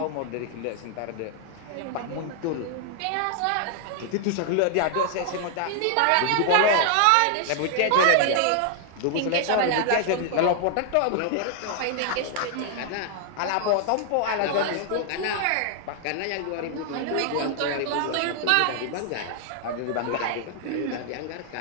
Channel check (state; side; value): different; both; correlation 0.00